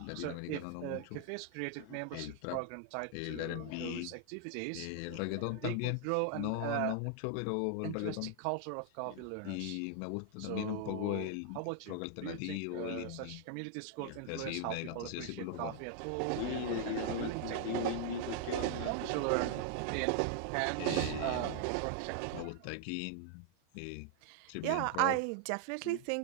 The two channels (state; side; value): different; both; correlation 0.00